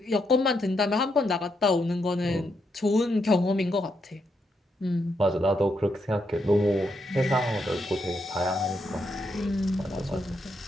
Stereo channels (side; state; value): both; normal; correlation 0.80